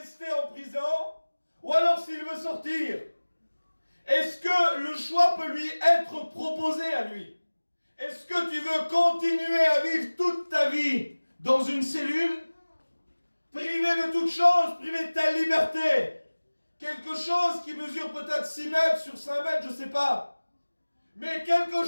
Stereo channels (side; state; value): both; inverted; correlation -1.00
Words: en prison, ou alors s'il veut sortir. Est-ce que le choix peut lui être proposé à lui? Est-ce que tu veux continuer à vivre toute ta vie dans une cellule, privé de toute chose, privé de ta liberté? Quelque chose qui mesure peut-être 6 mètres sur 5 mètres, je ne sais pas. Mais quelque